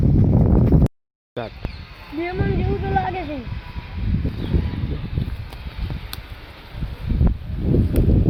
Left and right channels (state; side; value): identical; both; correlation 1.00